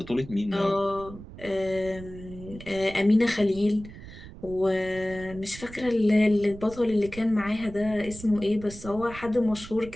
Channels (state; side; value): noise; right; rumble, 15 dB below the sound